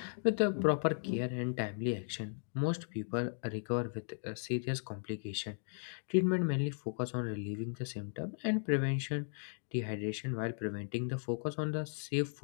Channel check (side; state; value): right; silent; digital silence